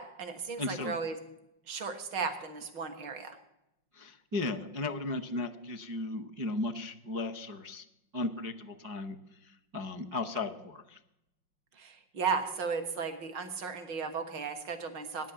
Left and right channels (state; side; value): late; left; 5.6 ms